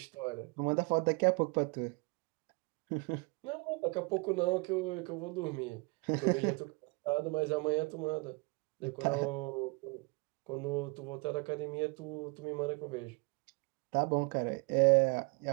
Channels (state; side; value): quieter; left; 28.9 dB